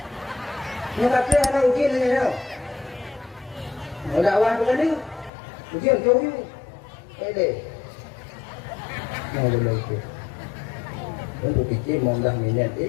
Nak kata anak uji ni tau. Mau dakwah bukan ni? Ujian jauh ni. Deh. Mau lagi. Aku fikir mau dah minat.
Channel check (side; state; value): right; drops out; at 5.3 s